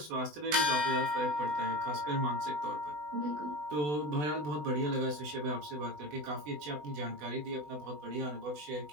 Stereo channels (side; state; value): left; late; 20 ms